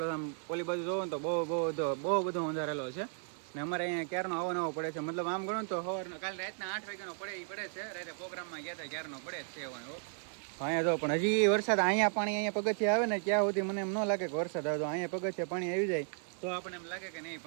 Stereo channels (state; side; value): silent; left; 55 dB below the other